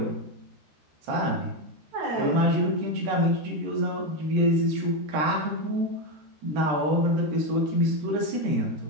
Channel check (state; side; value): late; left; 13 ms